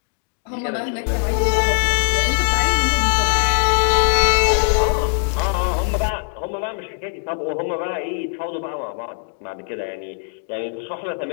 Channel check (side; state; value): right; silent; digital silence